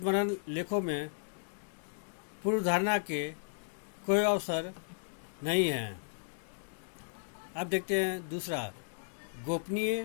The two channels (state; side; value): silent; right; digital silence